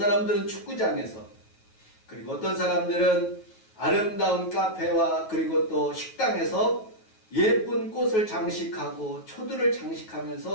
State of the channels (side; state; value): right; late; 9.3 ms